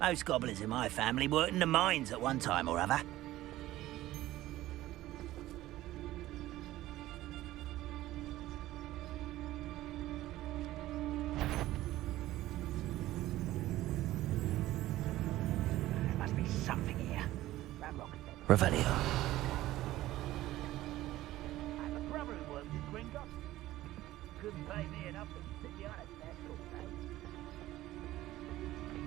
goblins in my family worked in the mines at one time or other. There must be something here. Ramrock said so. Revelio. I have a brother who worked in Gringotts. Couldn't pay me enough to sit behind a desk all day.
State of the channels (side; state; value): left; quieter; 15.7 dB